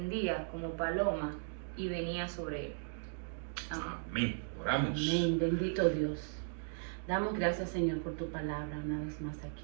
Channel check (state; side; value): silent; left; digital silence